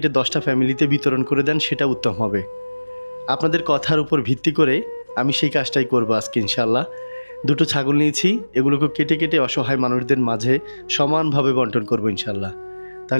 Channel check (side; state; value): both; inverted; correlation -1.00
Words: 10টা ফ্যামিলিতে বিতরণ করে দেন, সেটা উত্তম হবে। আপনাদের কথার উপর ভিত্তি করে আমি সেই কাজটাই করবো আজকে ইনশাআল্লাহ। 2টো ছাগল নিয়েছি, এগুলোকে কেটে কেটে অসহায় মানুষদের মাঝে সমানভাবে বন্টন করবো ইনশাআল্লাহ।